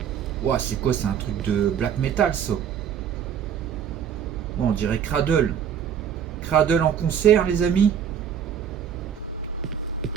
Ouah, c'est quoi? C'est un truc de black metal ça. Bon, on dirait Cradle. Cradle en concert les amis.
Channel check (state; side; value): quieter; left; 8.4 dB